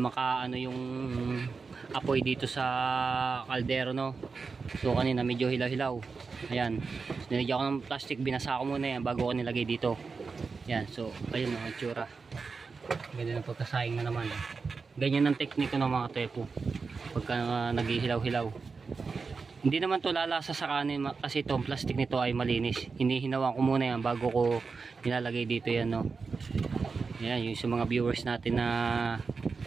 yung apoy dito sa kaldero, no. So kanina medyo hilaw-hilaw. Ayan, nilagyan ko ng plastic, binasa ko muna yan bago ko nilagay dito. Ayan, so ayun ang itsura. Ganyan ang pagkasaing na naman. Ganyan ang technique ng mga tepo pagka naghihilaw-hilaw. Hindi naman to lalasa sa kanin kasi itong plastic nito ay malinis. Hinihinawan ko muna yan bago ko nilalagay dito yan, no. Yan yung sa mga viewers natin na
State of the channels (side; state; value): left; quieter; 4.7 dB